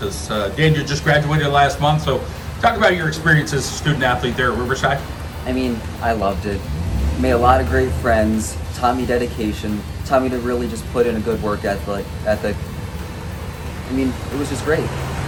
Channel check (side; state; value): both; identical; correlation 1.00